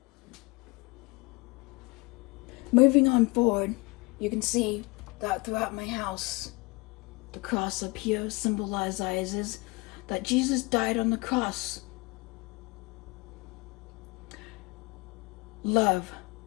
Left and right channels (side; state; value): right; quieter; 25.6 dB